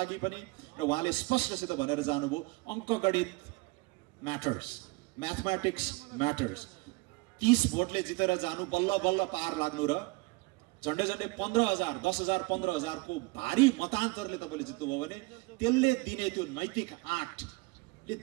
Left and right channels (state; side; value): quieter; left; 25.6 dB